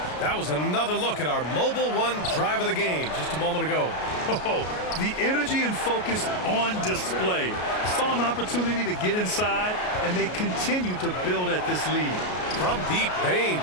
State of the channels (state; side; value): late; right; 33 ms